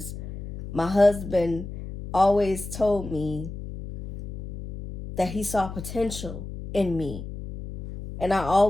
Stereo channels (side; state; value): left; noise; hum, 9 dB below the sound